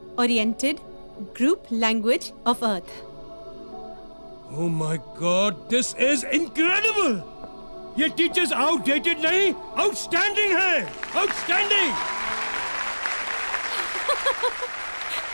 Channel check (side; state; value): both; inverted; correlation -1.00